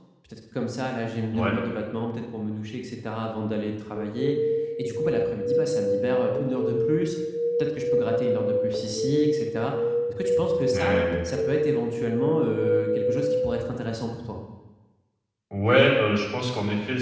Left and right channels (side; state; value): both; identical; correlation 1.00